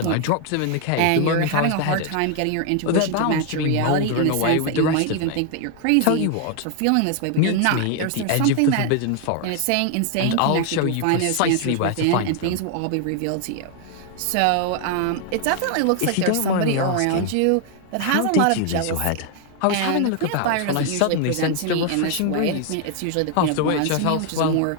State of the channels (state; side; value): different; both; correlation 0.00